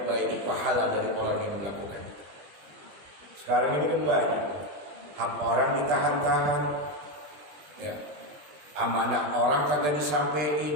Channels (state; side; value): late; left; 20 ms